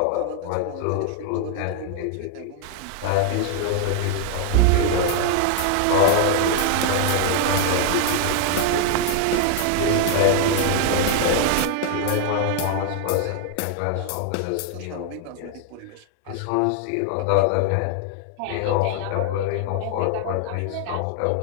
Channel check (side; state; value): both; different; correlation 0.00